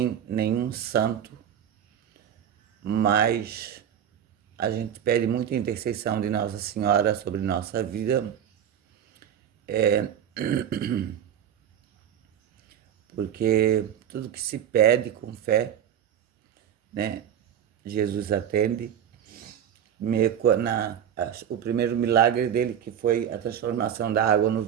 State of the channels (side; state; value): left; quieter; 9.4 dB